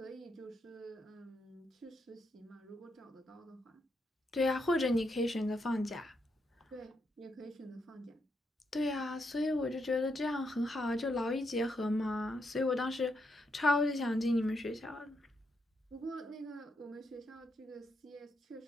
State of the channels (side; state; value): both; normal; correlation 0.80